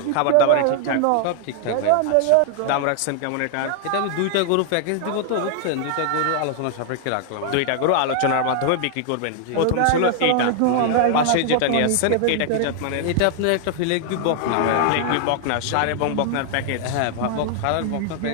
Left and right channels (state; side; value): different; both; correlation 0.00